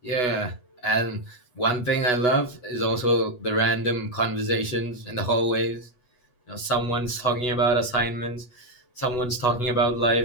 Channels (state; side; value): late; right; 8.1 ms